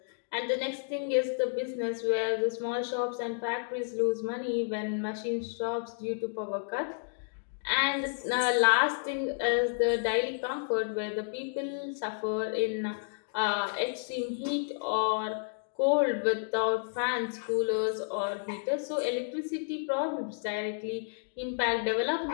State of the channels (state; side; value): silent; right; digital silence